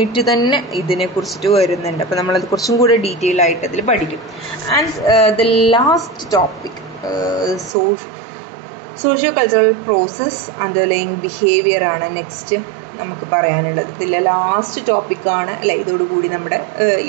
തന്നെ ഇതിനെക്കുറിച്ചിട്ട് വരുന്നുണ്ട്. അപ്പോൾ നമ്മളത് കുറച്ചും കൂടെ ഡീറ്റെയിൽ ആയിട്ട് അതിൽ പഠിക്കും. And the last topic socio cultural process underline behaviour ആണ് നെക്സ്റ്റ് നമുക്ക് പറയാനുള്ളത്. ഇതിലെ ലാസ്റ്റ് ടോപ്പിക്കാണ് അല്ലേ? ഇതോടുകൂടി നമ്മുടെ ഈ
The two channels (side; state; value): left; drops out; at 7.7 s